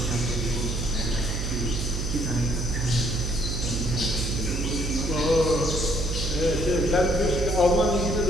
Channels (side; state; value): right; noise; hum, 2 dB below the sound